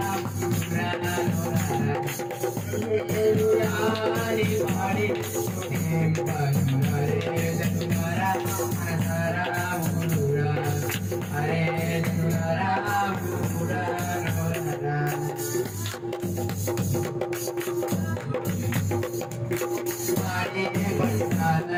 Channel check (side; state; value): both; identical; correlation 1.00